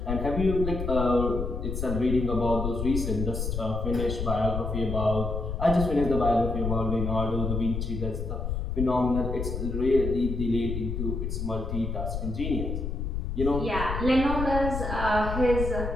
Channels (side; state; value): left; noise; rumble, 3 dB below the sound